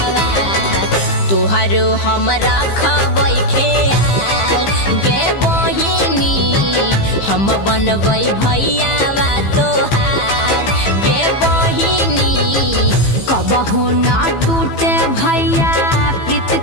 तोहर हमरा खबै ख्याल गे बहिनी हम बनबै भैया तोहार गे बहिनी। कबहू ना टूटे भैया प्रीत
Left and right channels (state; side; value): late; right; 15 ms